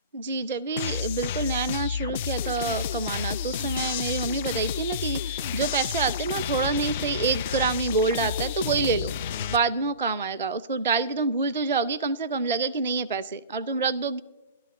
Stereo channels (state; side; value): inverted; both; correlation -0.33